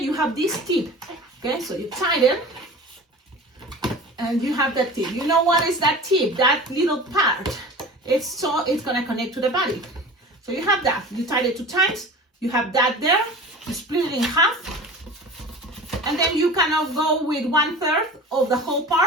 have this tip. Okay, so you tighten and you have that tip. You know what is that tip? That little part. It's gonna connect to the body. So you have that. You tighten it 2 times. You have that there. You split it in half. And then you cannot go with 1/3 of the whole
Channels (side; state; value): both; normal; correlation 0.37